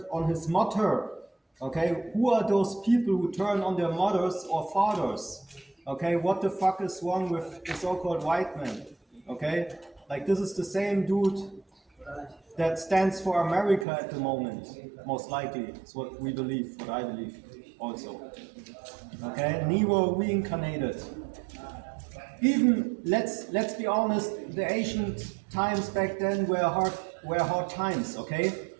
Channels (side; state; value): left; drops out; at 13.9 s